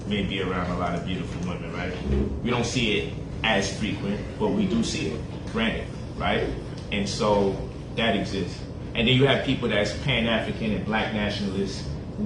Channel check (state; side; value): identical; both; correlation 1.00